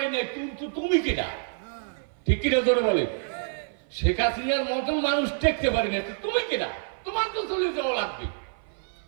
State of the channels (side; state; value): left; silent; 55 dB below the other